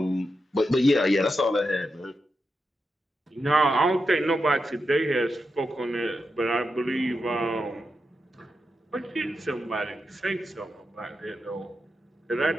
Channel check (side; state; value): both; normal; correlation 0.87